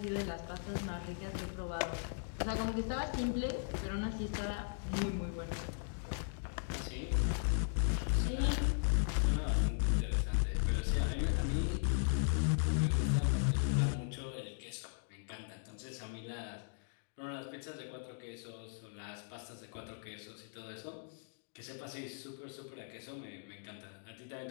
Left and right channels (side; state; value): right; silent; digital silence